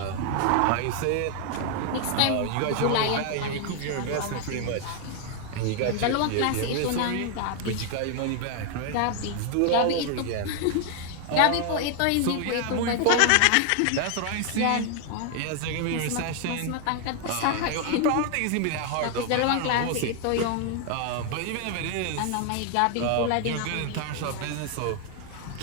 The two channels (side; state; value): both; different; correlation 0.00